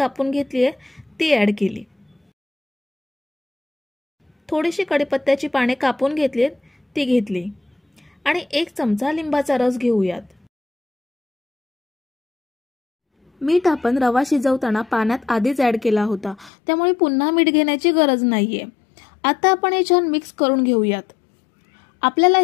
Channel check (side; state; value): right; drops out; at 16.5 s